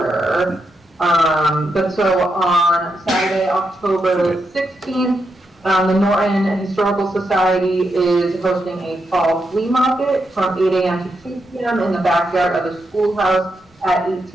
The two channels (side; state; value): both; normal; correlation 0.83